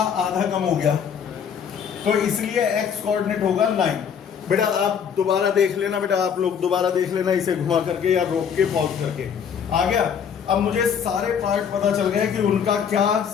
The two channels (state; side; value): quieter; right; 7.5 dB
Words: आधा कम हो गया, तो इसलिए x कोऑर्डिनेट होगा 9। बेटा आप दोबारा देख लेना, बेटा आप लोग दोबारा देख लेना इसे घुमा करके या रोक के पॉज करके। आ गया? अब मुझे सारे पार्ट पता चल गए कि उनका क्या